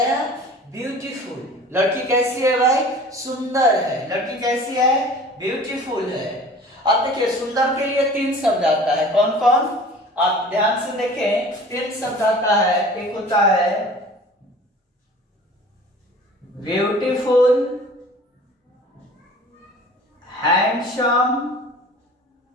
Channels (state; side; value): normal; both; correlation 0.44